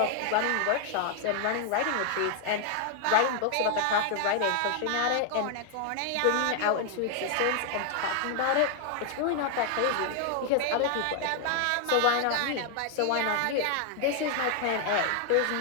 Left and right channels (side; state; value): both; different; correlation 0.00